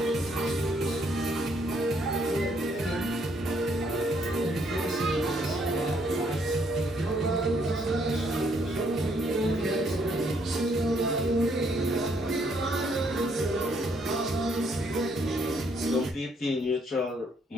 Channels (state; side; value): normal; both; correlation 0.69